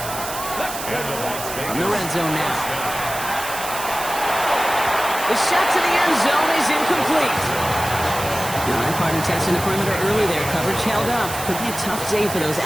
From the red zone now. The shot to the end zone is incomplete. Partner testing the perimeter early there. Coverage held up. Could be a tough day for those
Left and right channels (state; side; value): noise; right; hiss, 8 dB below the sound